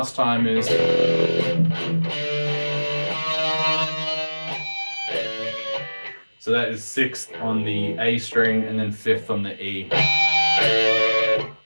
time is. So that is sixth on the A string and then fifth on the E.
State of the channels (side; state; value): both; inverted; correlation -1.00